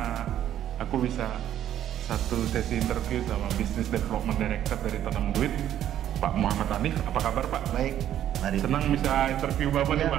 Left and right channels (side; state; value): left; quieter; 11.2 dB